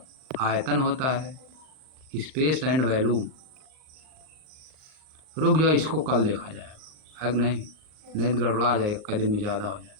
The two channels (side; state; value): left; late; 38 ms